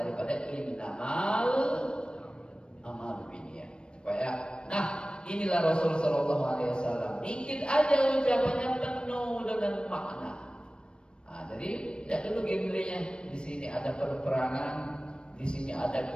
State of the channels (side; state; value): right; late; 0.055 ms